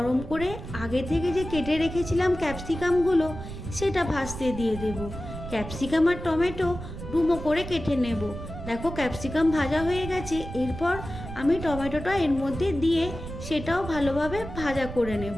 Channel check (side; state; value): right; noise; rumble, 10 dB below the sound